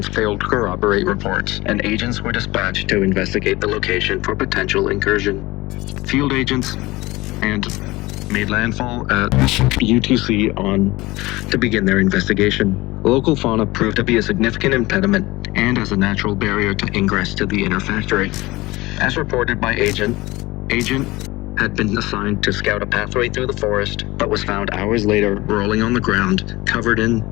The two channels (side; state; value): right; quieter; 20.4 dB